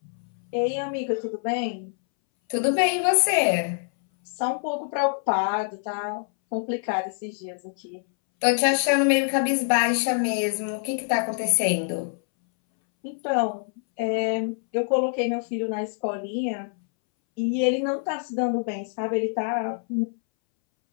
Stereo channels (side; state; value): right; silent; 61 dB below the other